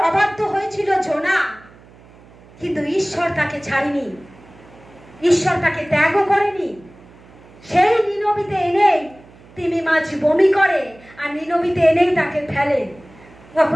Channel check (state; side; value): noise; right; hum, 24 dB below the sound